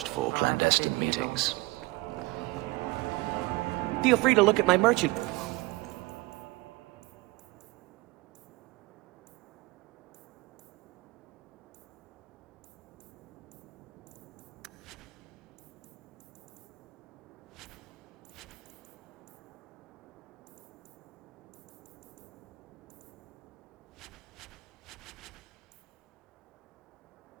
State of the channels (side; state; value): left; quieter; 22.7 dB